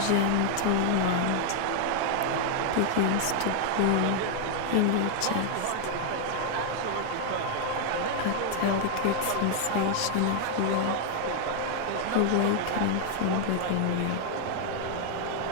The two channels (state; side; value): different; both; correlation 0.00